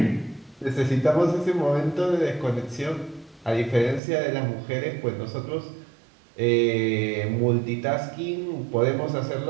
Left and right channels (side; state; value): left; drops out; at 4.0 s